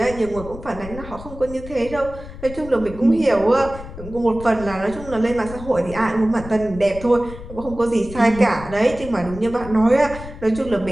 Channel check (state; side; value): noise; left; rumble, 13 dB below the sound